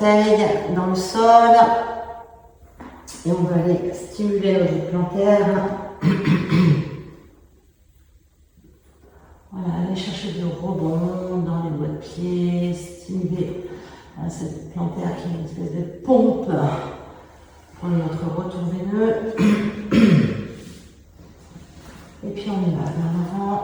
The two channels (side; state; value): both; identical; correlation 1.00